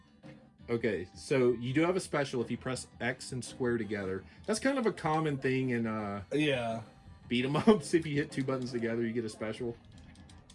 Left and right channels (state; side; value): identical; both; correlation 1.00